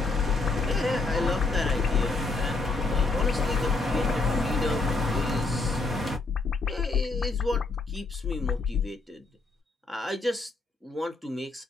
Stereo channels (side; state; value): right; quieter; 3.4 dB